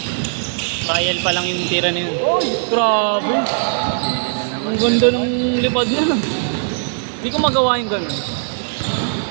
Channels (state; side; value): silent; left; digital silence